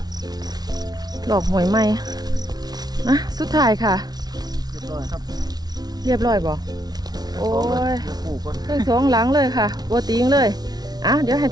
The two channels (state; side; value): late; left; 0.19 ms